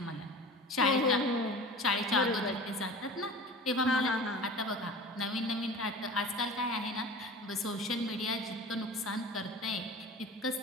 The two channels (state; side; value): normal; both; correlation 0.37